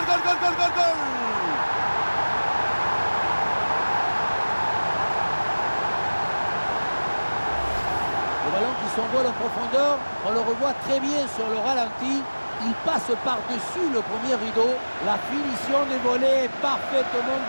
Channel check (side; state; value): both; inverted; correlation -1.00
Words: goal, goal, goal, goal, goal! Le ballon qui s'envole en profondeur, on le revoit très bien sur le ralenti. Il passe par-dessus le premier rideau. La finition des volets est parfaitement